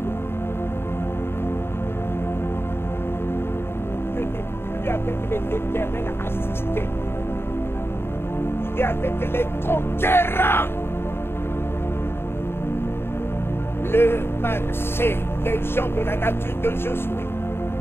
Je n'ai plus avec les éternels assistés. Il est avec les conquérants. Le mal, c'est les gens de la nature de Josué.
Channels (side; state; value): right; late; 0.11 ms